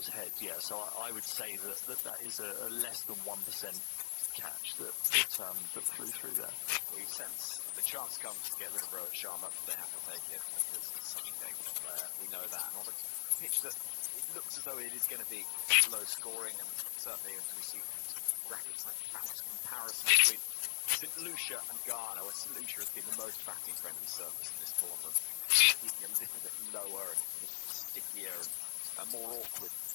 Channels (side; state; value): right; silent; 51 dB below the other